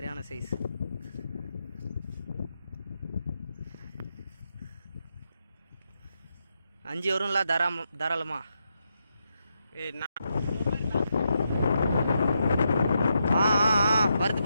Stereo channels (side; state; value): both; inverted; correlation -0.83